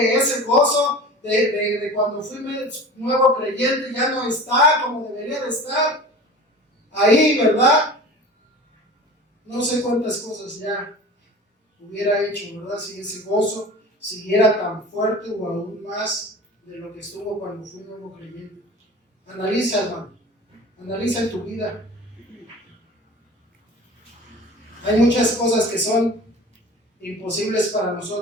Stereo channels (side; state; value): both; normal; correlation 0.38